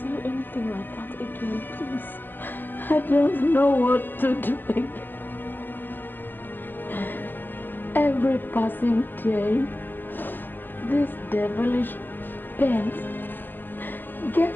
anything like that again, please. I don't know what to do again. Every passing day, this devilish pain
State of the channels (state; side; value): late; right; 0.091 ms